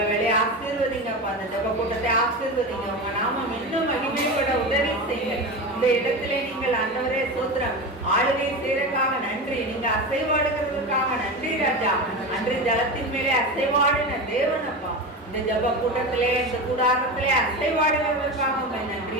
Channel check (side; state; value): both; normal; correlation 0.24